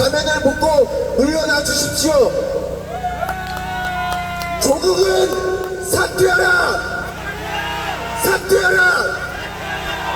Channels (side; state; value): both; identical; correlation 1.00